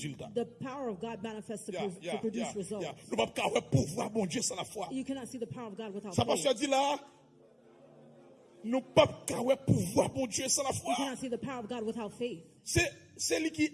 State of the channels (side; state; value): both; identical; correlation 1.00